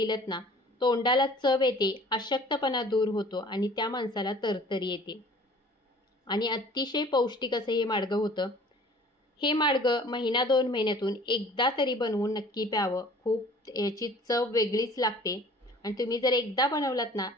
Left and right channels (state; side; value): normal; both; correlation 0.49